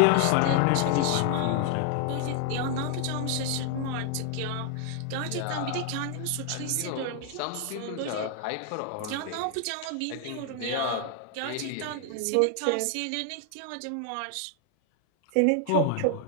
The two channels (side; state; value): both; different; correlation 0.00